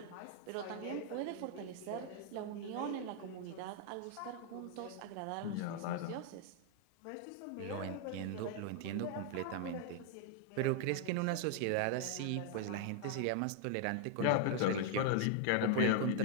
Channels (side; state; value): both; different; correlation 0.00